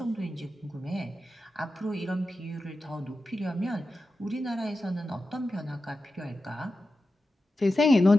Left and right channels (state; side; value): normal; both; correlation 0.92